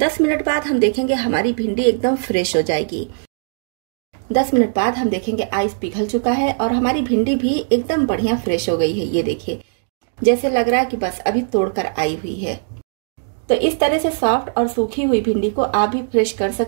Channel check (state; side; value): silent; left; digital silence